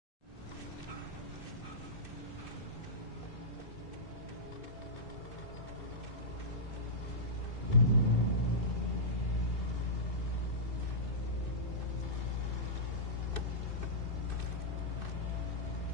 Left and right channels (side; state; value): right; late; 2.6 ms